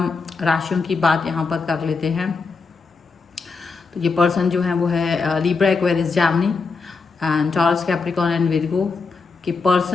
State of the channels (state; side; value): quieter; right; 4.5 dB